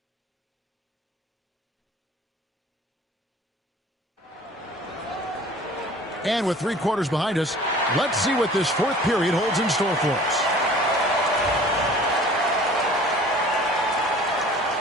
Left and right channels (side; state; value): both; normal; correlation 0.47